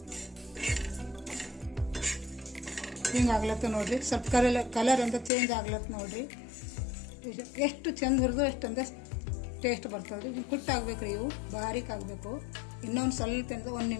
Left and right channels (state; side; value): drops out; right; at 5.3 s